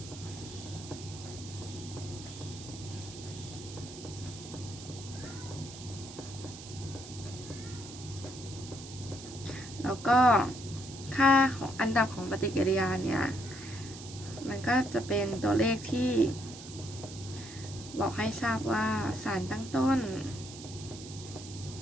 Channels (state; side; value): noise; right; hiss, 14 dB below the sound